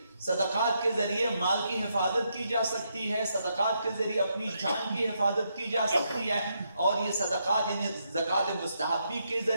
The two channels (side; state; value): both; inverted; correlation -0.79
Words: صدقات کے ذریعے مال کی حفاظت کی جا سکتی ہے، صدقات کے ذریعے اپنی جان کی حفاظت کی جا سکتی ہے، اور یہ صدقات یعنی زکوٰۃ مستحبی کے